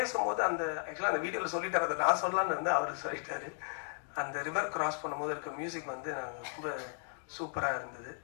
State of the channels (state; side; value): silent; right; 54 dB below the other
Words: ஆக்சுவலாக அந்த வீடியோவில் சொல்லிட்டார், அதை நான் சொல்லலான்னு இருந்து அவர் சொல்லிட்டாரு. அந்த ரிவர் கிராஸ் பண்ணும்போது இருக்க மியூசிக் வந்து நாங்கள் ரொம்ப சூப்பராக இருந்தது.